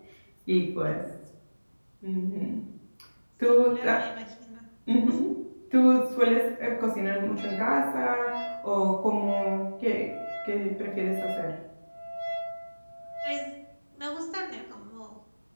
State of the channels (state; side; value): inverted; both; correlation -1.00